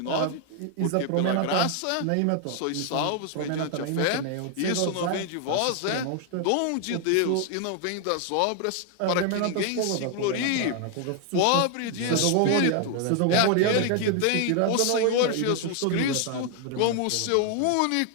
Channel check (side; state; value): both; different; correlation 0.00